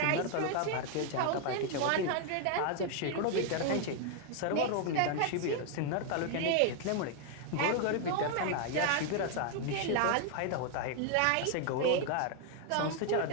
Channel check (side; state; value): both; different; correlation 0.00